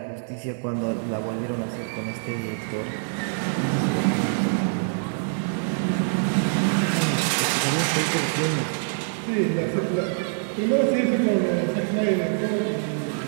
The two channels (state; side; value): silent; left; digital silence